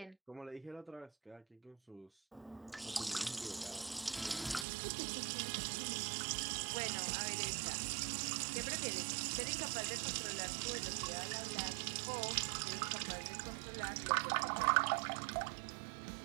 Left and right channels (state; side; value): drops out; left; at 4.7 s